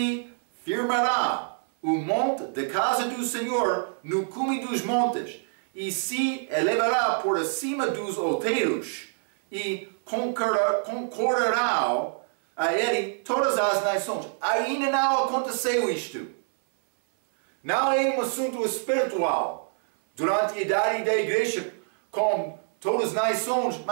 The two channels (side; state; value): left; silent; 60 dB below the other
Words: firmará o monte da casa do Senhor no cume dos montes, e se elevará por acima dos outeiros, e concorrerão a ele todas as nações. Ainda não aconteceu isto. Não é um assunto espiritual. Durante a idade da igreja, com todas as nações,